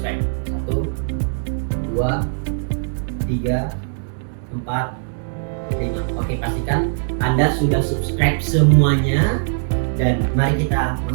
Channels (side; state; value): left; silent; 65 dB below the other